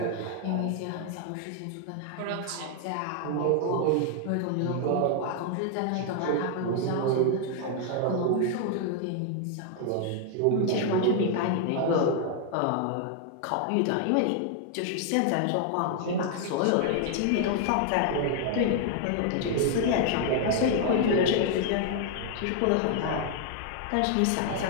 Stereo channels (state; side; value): different; both; correlation 0.00